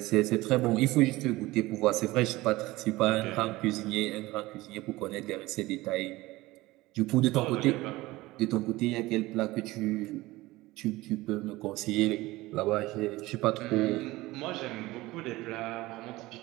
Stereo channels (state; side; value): quieter; left; 19.3 dB